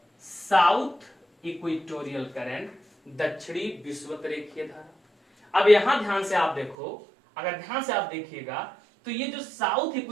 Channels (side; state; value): left; drops out; at 6.8 s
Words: साउथ इक्वेटोरियल करंट, दक्षिणी विषुवत रेखीय धारा। अब यहां ध्यान से आप देखो, अगर ध्यान से आप देखिएगा तो ये जो साउथ